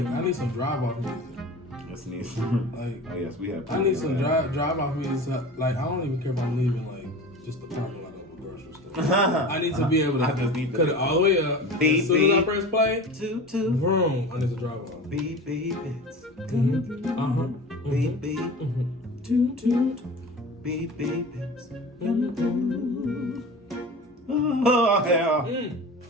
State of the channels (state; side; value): normal; both; correlation 0.34